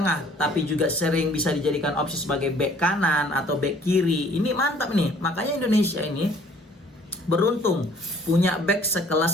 tapi juga sering bisa dijadikan opsi sebagai back kanan atau back kiri, ini mantap nih. Makanya Indonesia ini beruntung punya back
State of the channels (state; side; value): normal; both; correlation 0.57